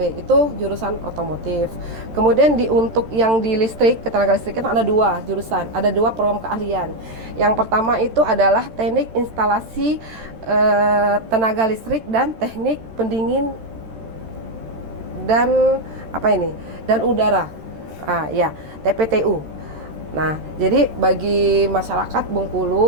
itu jurusan otomotif. Kemudian untuk yang di listrik, ketenaga listrikan ada 2 jurusan, ada 2 program keahlian. Yang pertama itu adalah teknik instalasi tenaga listrik dan teknik pendingin dan dan udara, TPTU. Nah, jadi bagi masyarakat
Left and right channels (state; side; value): late; left; 13 ms